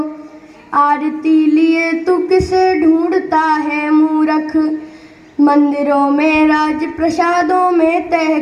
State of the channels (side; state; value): both; identical; correlation 1.00